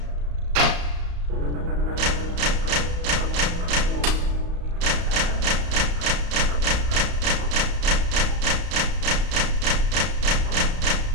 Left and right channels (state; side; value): late; left; 34 ms